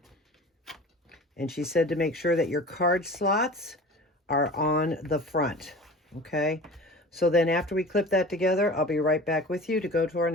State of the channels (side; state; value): both; normal; correlation 0.38